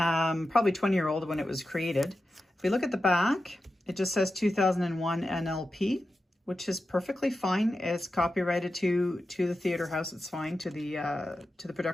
20-year-old when it was created. If we look at the back, it just says 2001 NLP, which is perfectly fine. It's copyrighted to the theater house. It's fine to the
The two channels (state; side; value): normal; both; correlation 0.91